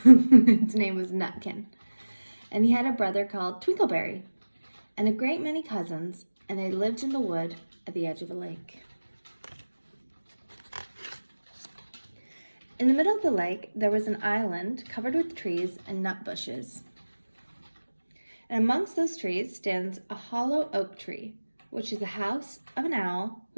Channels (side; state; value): both; inverted; correlation -1.00